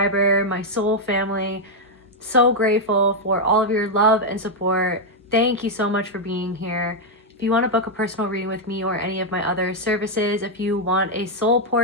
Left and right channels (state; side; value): normal; both; correlation -0.01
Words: my soul family, so grateful for all of your love and support. Thank you so much for being here. If you want to book a personal reading with me or any of my other services, if you want a soul